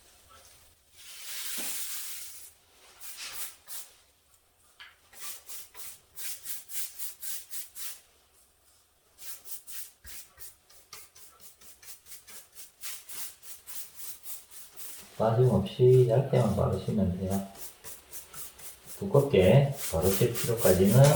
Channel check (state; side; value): identical; both; correlation 1.00